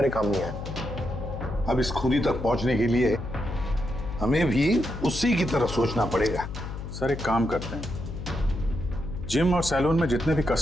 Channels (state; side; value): noise; left; hum, 8 dB below the sound